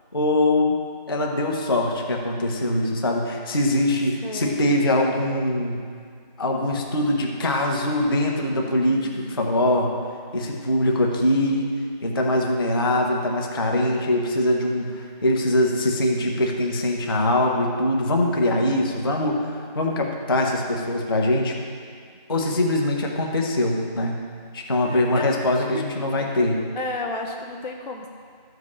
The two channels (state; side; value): inverted; both; correlation -0.56